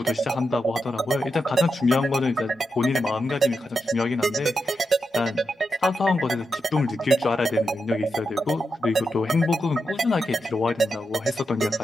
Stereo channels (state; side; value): normal; both; correlation 0.86